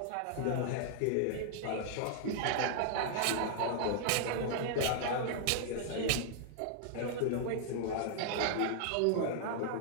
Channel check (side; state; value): both; different; correlation -0.01